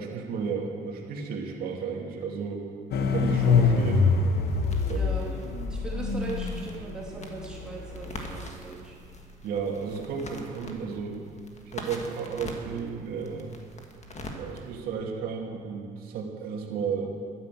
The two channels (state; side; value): normal; both; correlation 0.47